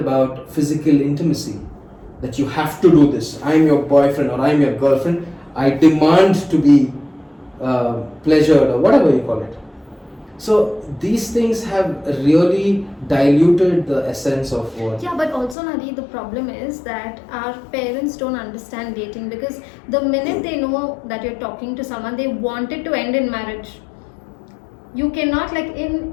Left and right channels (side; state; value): right; drops out; at 15.6 s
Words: physical intimacy, that you have to do this. I'm your boyfriend or I'm your girlfriend. I demand to be pleasured or whatever you call it. So these things have really diluted the essence of what. Yeah, but also Nadi, the problem is that our parents don't understand dating, because the minute they know that you're talking to someone, they want it to end in marriage. You cannot, like in